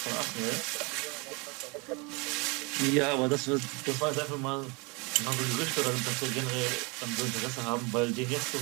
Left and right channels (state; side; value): quieter; left; 29.1 dB